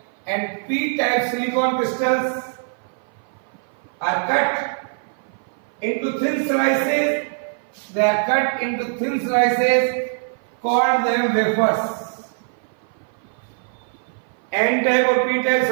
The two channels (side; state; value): left; silent; 58 dB below the other